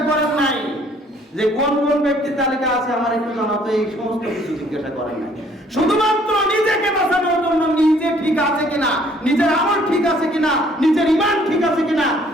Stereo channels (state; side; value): normal; both; correlation 0.61